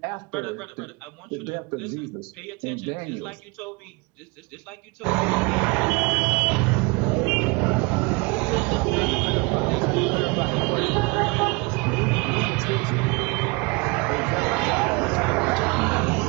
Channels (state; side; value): quieter; left; 27.7 dB